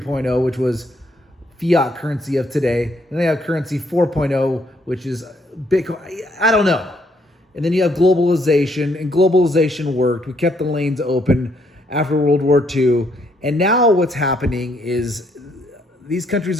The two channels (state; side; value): normal; both; correlation 0.71